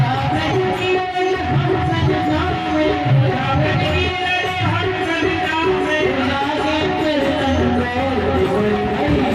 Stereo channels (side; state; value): both; identical; correlation 1.00